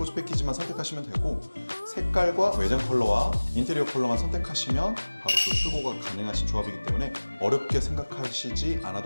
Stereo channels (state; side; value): inverted; both; correlation -1.00